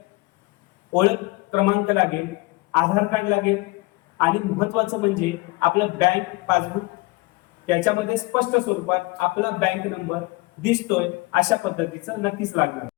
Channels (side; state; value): right; quieter; 23.2 dB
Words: ओळख क्रमांक लागेल, आधार कार्ड लागेल आणि महत्वाचं म्हणजे आपलं बँक पासबुक. त्याच्यामध्ये स्पष्ट स्वरूपात आपला बँक नंबर दिसतोय अशा पद्धतीचं नक्कीच लागणार.